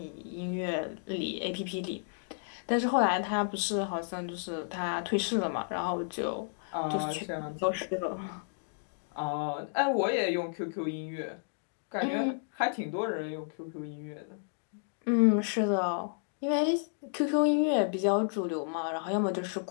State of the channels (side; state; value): right; silent; digital silence